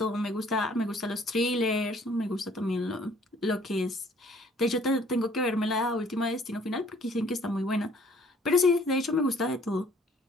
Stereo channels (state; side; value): normal; both; correlation 0.58